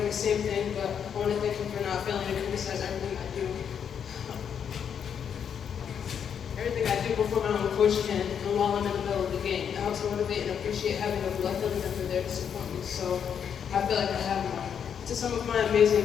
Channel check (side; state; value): right; quieter; 7.8 dB